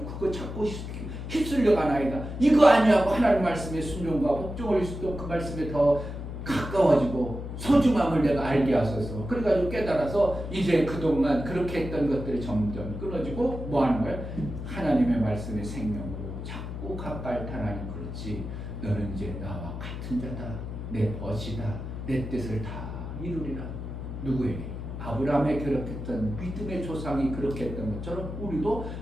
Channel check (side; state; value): left; noise; hum, 7 dB below the sound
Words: 그거 자꾸 휩쓸려 가나이다, 이거 아니하고 하나님 말씀에 순종과 복종을 수도 그 말씀에 더 가까워지고 소중함을 내가 알게 하소서. 그래가지고 깨달아서 이제 그동안 그렇게 했던 것들이 점점 끊어지고 뭐 하는 거야? 하나님의 말씀의 생명으로 자꾸 가까이 타라니. 그렇지, 너는 이제 나와 같은 자다, 내 벗이다, 내 뜻을 다 이루리라. 누구에게? 아브라함에 그렇게 했던 믿음의 조상이 그렇게 했던 것처럼 우리도